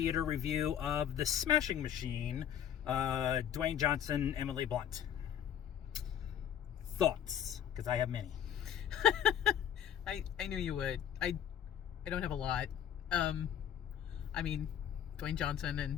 review of The Smashing Machine, Dwayne Johnson, Emily Blunt. Thoughts? Because I have many. I knew you would. I don't have a lot. Dwayne Johnson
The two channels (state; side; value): quieter; right; 9.7 dB